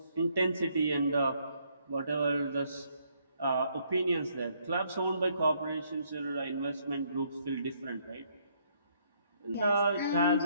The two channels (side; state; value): both; inverted; correlation -0.70